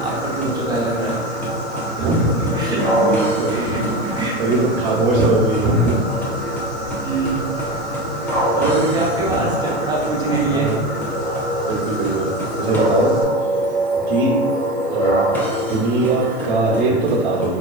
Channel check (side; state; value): right; noise; hiss, 28 dB below the sound